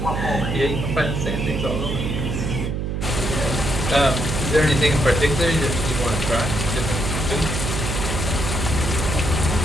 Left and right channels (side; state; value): right; noise; hum, 2 dB below the sound